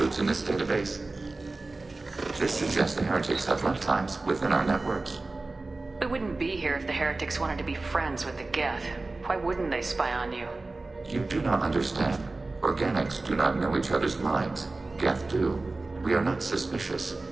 in this database. This suggests the Heretics have runtimes within our networks. We wouldn't be here if the Heretics wanted to be friends with the Geth. Why wouldn't they spy on you? You do not understand. Organics do not know each other's minds. Geth do. We are not suspicious.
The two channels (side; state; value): left; quieter; 3.3 dB